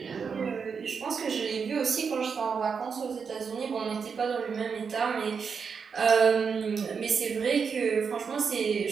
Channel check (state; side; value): quieter; left; 6.0 dB